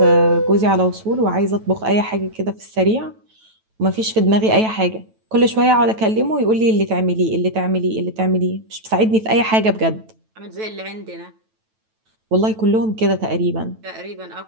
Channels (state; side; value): late; left; 9.1 ms